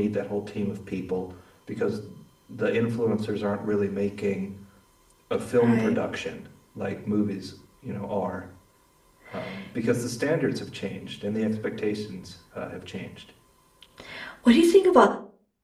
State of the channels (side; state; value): both; identical; correlation 1.00